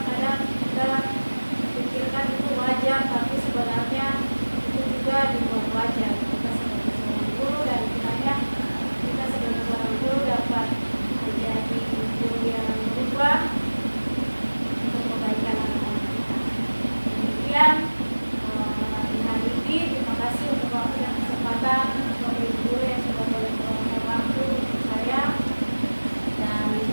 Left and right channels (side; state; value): both; inverted; correlation -1.00